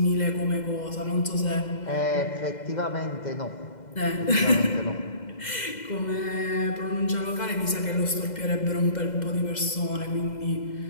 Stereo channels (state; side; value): late; right; 2.0 ms